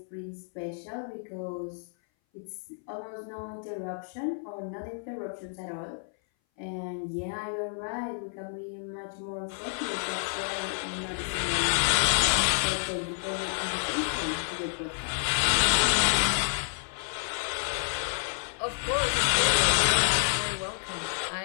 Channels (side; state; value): right; silent; 58 dB below the other